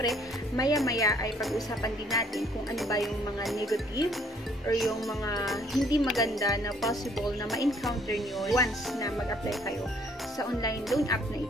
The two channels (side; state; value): both; normal; correlation 0.63